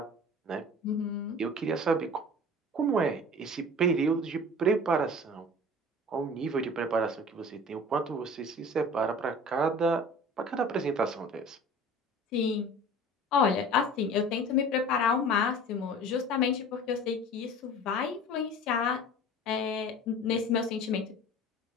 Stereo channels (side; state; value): both; normal; correlation 0.41